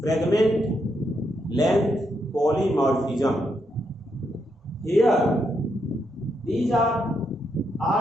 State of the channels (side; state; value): both; normal; correlation 0.80